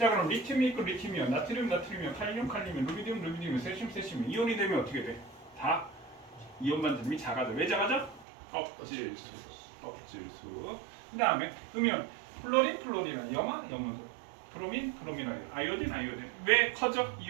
그럼 리튬이 있고 리튬이온, 나트륨, 칼륨, 루비디움, 세슘. 이온이 되면 어떻게 돼? 다 이온 반지름이 작아져. 왜 작아져? 껍질수. 그 다음에 음이온, 플로린, 염원소. 브로민, 아이오딘. 왜 커져?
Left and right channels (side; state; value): left; drops out; at 8.2 s